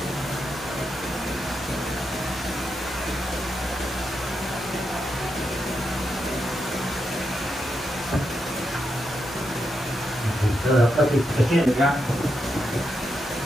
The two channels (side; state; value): both; normal; correlation 0.84